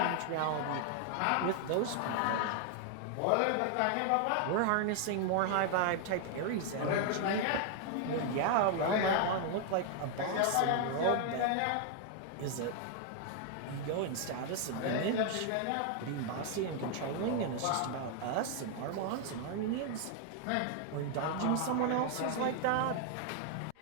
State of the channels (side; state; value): both; different; correlation 0.00